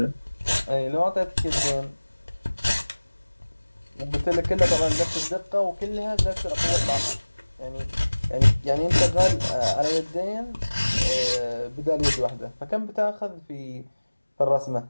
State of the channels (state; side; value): inverted; both; correlation -1.00